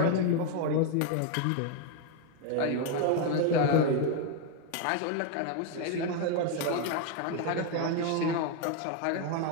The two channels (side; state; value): both; different; correlation 0.01